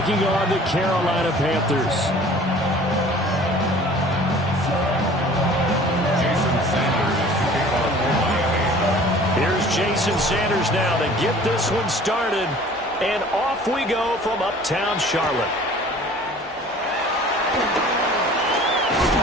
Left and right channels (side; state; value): both; normal; correlation 0.48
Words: on the Carolina Panthers. Here's Jason Sanders now to get this one started. And off we go from Uptown Charlotte.